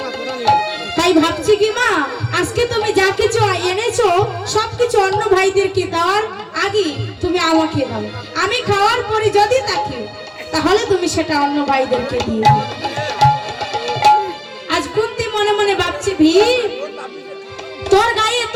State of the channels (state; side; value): identical; both; correlation 1.00